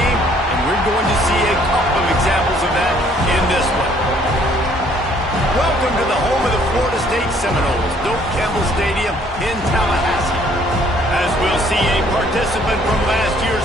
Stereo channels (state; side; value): normal; both; correlation 0.62